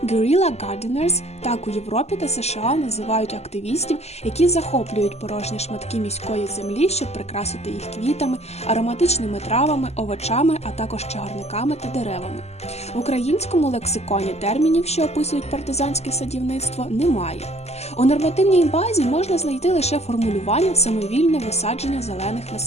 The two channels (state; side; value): late; right; 0.31 ms